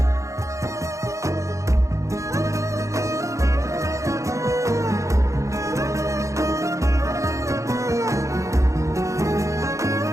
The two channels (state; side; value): late; left; 0.15 ms